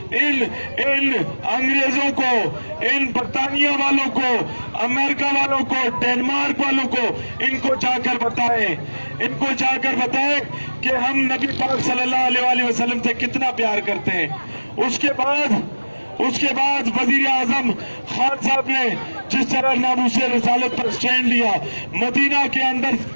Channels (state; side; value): inverted; both; correlation -1.00